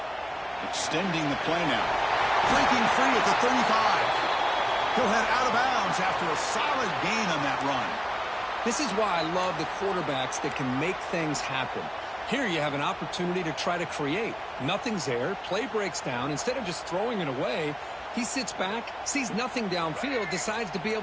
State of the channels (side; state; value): both; identical; correlation 1.00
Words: Extending the play now. Breaking free at the 35. He'll head out of bounds after a solid gain on that run. This is why I love the quarterbacks that can make things happen. Here you have an opportunity to try to create. Nothing's there, play breaks down. Instead of just throwing it away, he sits back, sees nothing downfield, decides to be